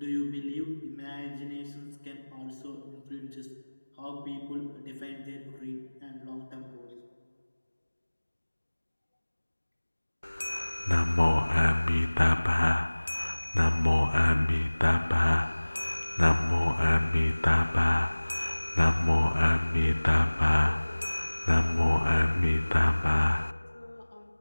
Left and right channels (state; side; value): inverted; both; correlation -1.00